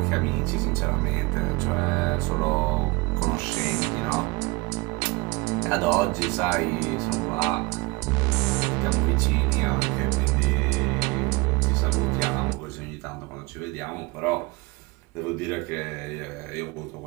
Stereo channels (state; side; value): quieter; left; 25.1 dB